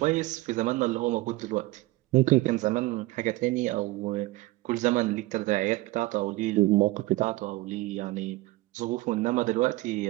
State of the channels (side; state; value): left; quieter; 19.4 dB